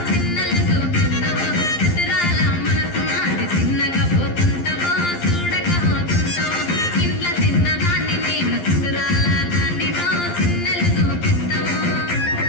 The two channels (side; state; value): right; late; 11 ms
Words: చిన్నలు చూపిస్తావు చిత్రాల మనసు నాది చిన్నగా పోతుంటావు చూడగా పోతుంటావు ఇంట్లో చిన్నదాన్ని నేను చిత్రాల దానితో చిన్నలు చూపిస్తావు